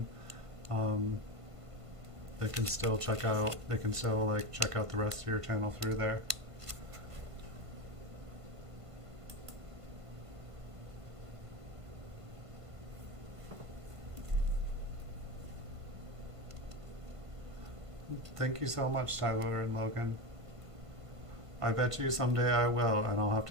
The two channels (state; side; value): late; left; 1.5 ms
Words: they can still check out the rest of your channel through there. Thank you so much, Tyler and Logan. I bet you someday I will, and I'll have